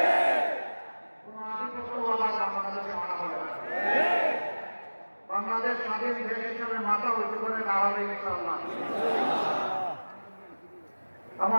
কোন আধিপত্যওয়ালা বাংলাদেশে মানা হবে না। বাংলাদেশ স্বাধীন দেশ হিসাবে মাথা উঁচু করে দাঁড়াবে ইনশাআল্লাহ।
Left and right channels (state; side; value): inverted; both; correlation -1.00